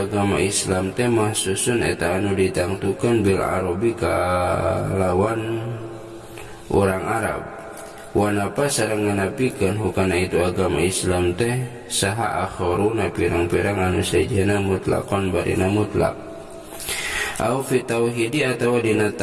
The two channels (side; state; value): both; identical; correlation 1.00